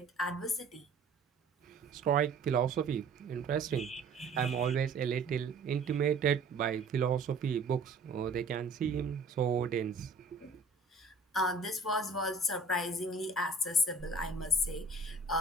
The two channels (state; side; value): quieter; left; 3.5 dB